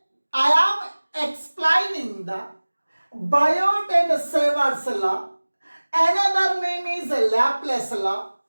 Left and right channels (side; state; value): both; inverted; correlation -1.00